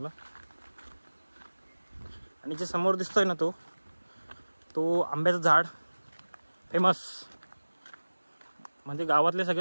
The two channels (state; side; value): inverted; both; correlation -1.00